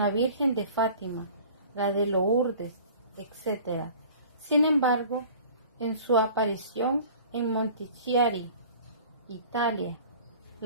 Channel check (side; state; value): both; inverted; correlation -0.45